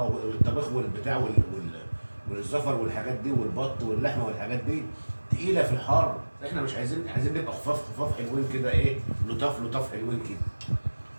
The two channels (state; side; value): inverted; both; correlation -1.00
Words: والبتاع والزفر والحاجات دي والبط واللحمه والحاجات دي تقيله في الحر. احنا مش عايزين نبقى خفاف خفاف حلوين كده، ايه؟ لطاف لطاف حلوين كده.